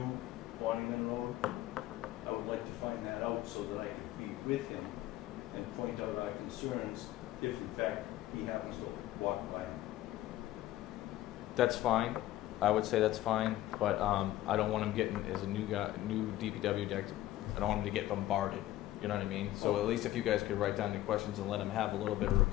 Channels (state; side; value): quieter; right; 14.8 dB